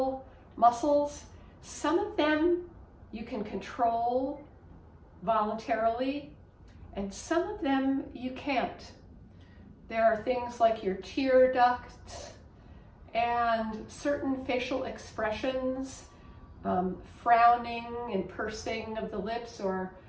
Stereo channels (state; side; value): identical; both; correlation 1.00